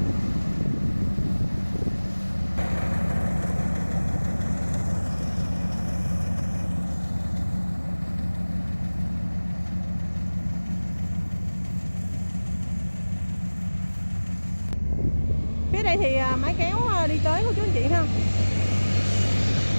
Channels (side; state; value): both; inverted; correlation -1.00